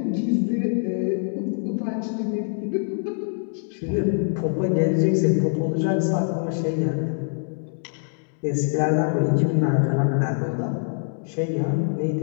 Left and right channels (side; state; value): right; silent; 62 dB below the other